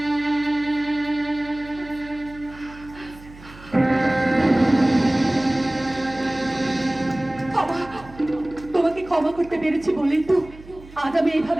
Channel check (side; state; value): right; noise; hum, 19 dB below the sound